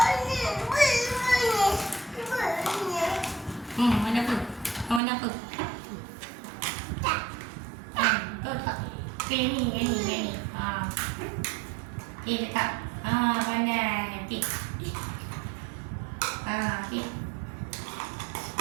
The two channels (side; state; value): left; drops out; at 5.0 s